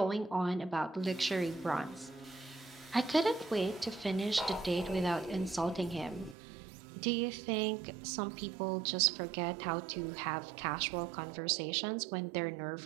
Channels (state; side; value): drops out; left; at 6.4 s